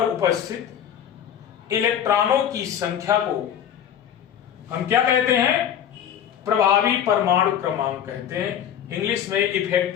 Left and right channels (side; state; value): right; quieter; 9.5 dB